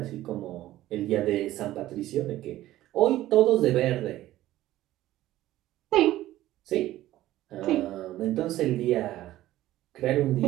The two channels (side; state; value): left; quieter; 14.9 dB